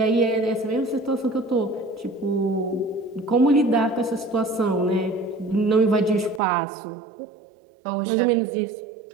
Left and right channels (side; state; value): left; drops out; at 6.4 s